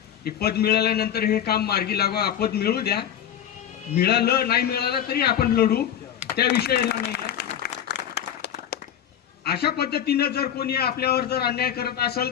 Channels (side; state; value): right; quieter; 10.0 dB